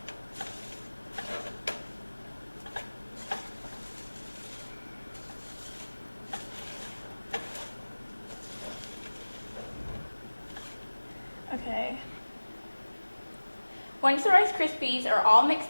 Okay. Once the Rice Krispies are all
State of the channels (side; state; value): both; inverted; correlation -1.00